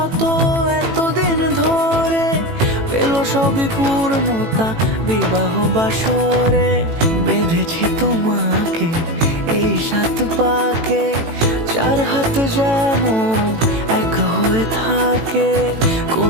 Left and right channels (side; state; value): left; late; 18 ms